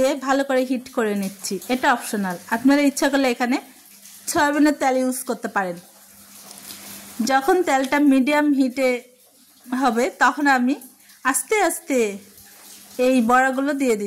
ভালো করে হিট করে নিচ্ছি। এটা অপশনাল, আপনারা ইচ্ছা করলে এখানে সয়াবিনের তেল ইউজ করতে পারেন। যখন তেলটা মিডিয়াম হিটে হবে তখন আমি আস্তে আস্তে এই বড়াগুলো দিয়ে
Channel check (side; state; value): both; identical; correlation 1.00